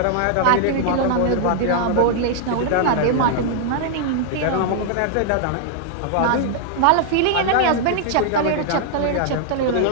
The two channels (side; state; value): both; different; correlation 0.00